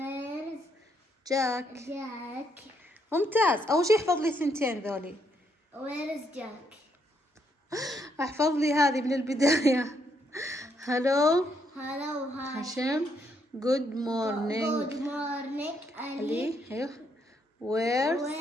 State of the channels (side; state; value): both; normal; correlation 0.74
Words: جاك. ممتاز. أول شي احفظ لي ثنتين ذولي. ويرز جاك. احفظ لي هذه من البداية. هلو هاشم. جود مورنينج علي. ايوه ويرز